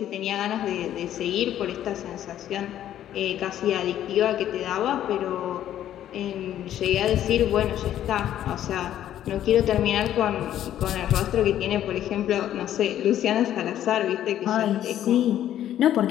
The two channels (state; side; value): quieter; right; 11.6 dB